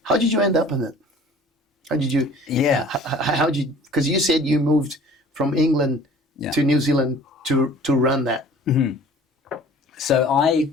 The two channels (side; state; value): both; normal; correlation 0.48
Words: How did you end up in it? How did you? Yeah. How did you? Because you said you moved from England to New Zealand to run that. Mm-hmm. So